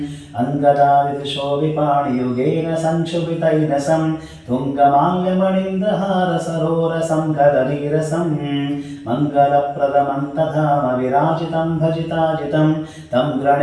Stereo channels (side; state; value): both; identical; correlation 1.00